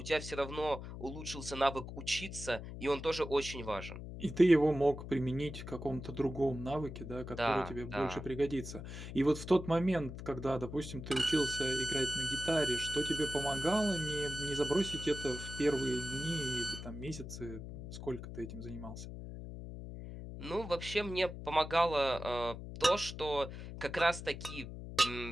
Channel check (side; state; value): left; noise; hum, 10 dB below the sound